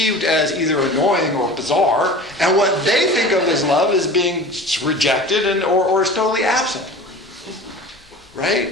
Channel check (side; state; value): both; normal; correlation 0.37